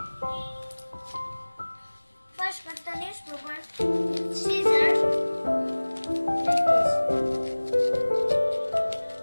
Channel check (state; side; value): inverted; both; correlation -1.00